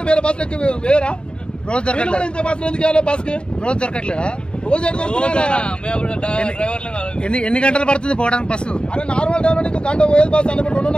వేరే బస్సులు ఎక్కి వేరా రోజు దొరకట్లేదు. ఇంత బస్సులు ఎందుకు వెళ్ళాలి? బస్ కి రోజు దొరకట్లేదా? రోజు ఎన్ని గంటలు పడుతుంది పోవడానికి బస్సు? అరే నార్మల్ టైం లో గంట పోయేది బస్సు అన్నప్పుడు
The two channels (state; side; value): late; right; 0.052 ms